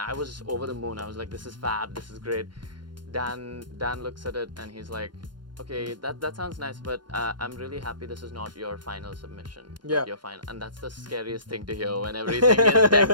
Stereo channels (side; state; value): left; late; 0.71 ms